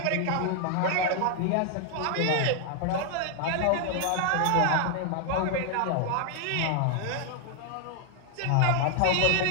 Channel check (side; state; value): both; different; correlation 0.00